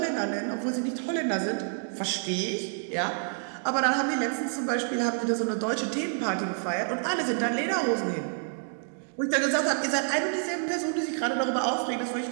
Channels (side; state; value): left; silent; 59 dB below the other